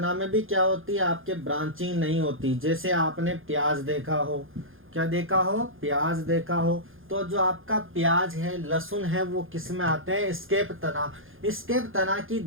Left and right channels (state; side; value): late; left; 0.59 ms